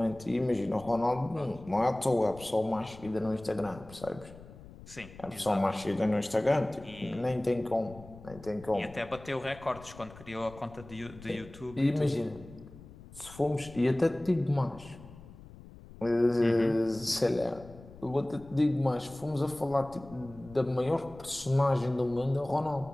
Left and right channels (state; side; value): noise; left; rumble, 18 dB below the sound